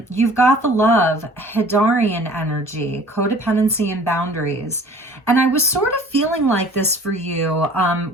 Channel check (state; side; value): normal; both; correlation 0.49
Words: You've got the love, Hedarian energy, codependency and boundaries. And I was sort of feeling like this for you